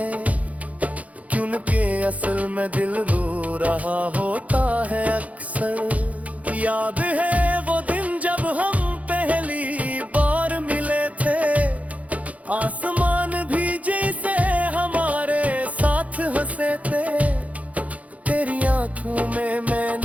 क्योंकि असल में दिल रो रहा होता है अक्सर। याद है वो दिन जब हम पहली बार मिले थे, आसमान भी जैसे हमारे साथ हंसे थे। तेरी आंखों में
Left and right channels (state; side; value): late; left; 0.069 ms